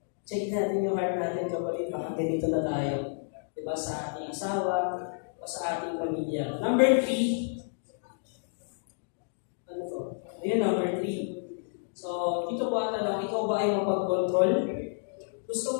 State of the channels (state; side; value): silent; right; digital silence